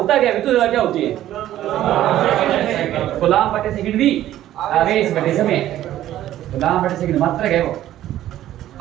क्या? विद्युत धारा क्या होती है? कूलाम बटे सेकंड भी आवेश बटे समय। कूलाम बटे सेकंड मात्रक है वो।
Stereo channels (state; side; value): quieter; left; 13.1 dB